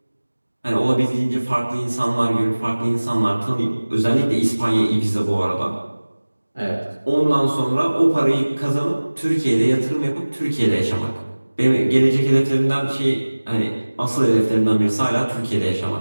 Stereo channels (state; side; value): inverted; both; correlation -1.00